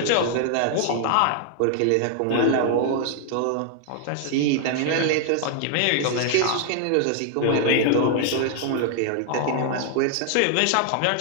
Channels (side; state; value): both; different; correlation 0.00